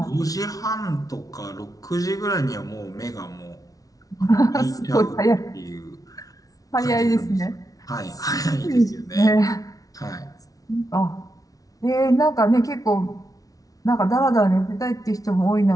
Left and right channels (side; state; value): right; late; 0.18 ms